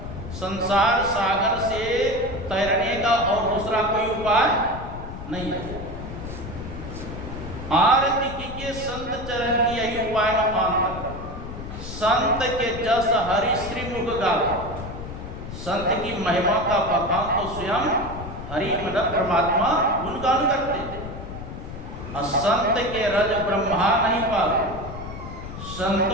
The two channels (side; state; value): left; noise; rumble, 10 dB below the sound